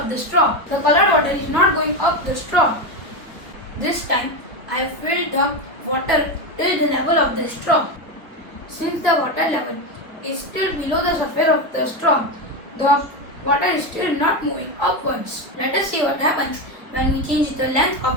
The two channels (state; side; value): normal; both; correlation 0.13